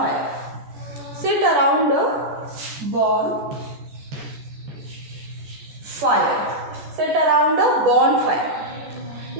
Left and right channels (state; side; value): late; left; 14 ms